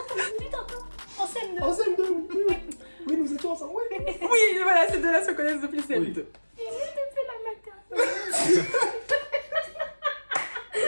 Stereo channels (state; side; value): inverted; both; correlation -1.00